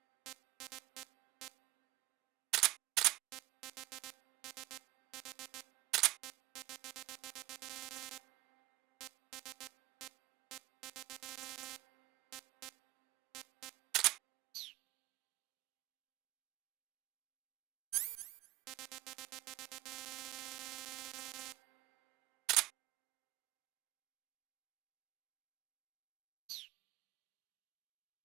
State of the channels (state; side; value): quieter; left; 19.3 dB